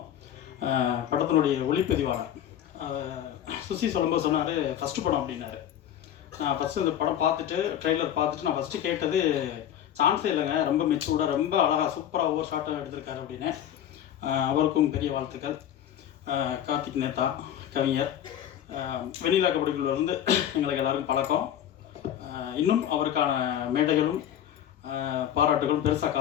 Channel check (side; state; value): right; quieter; 10.6 dB